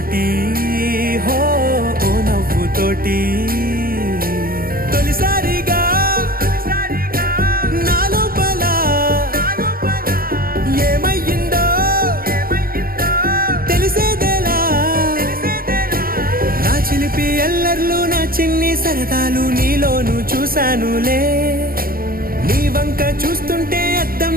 హో ఓ నవ్వుతోటి తొలిసారిగా నా లోపల ఏమయ్యిందో తెలిసేదేలా. నా చిలిపి ఎల్లర్లు నా చిన్ని సరదాలు నీలోను చూశానులే. నీ వంక చూస్తుంటే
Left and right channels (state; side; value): late; left; 0.42 ms